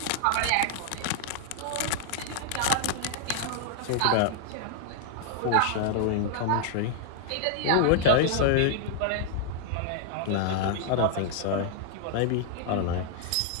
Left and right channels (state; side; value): different; both; correlation -0.01